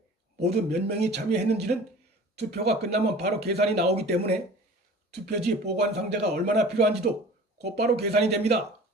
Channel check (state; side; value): normal; both; correlation 0.43